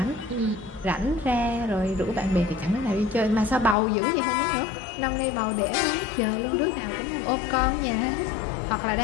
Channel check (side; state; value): right; drops out; at 3.8 s